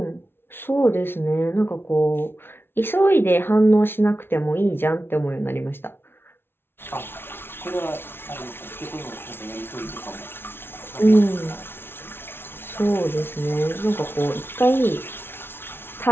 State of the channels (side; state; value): right; late; 0.11 ms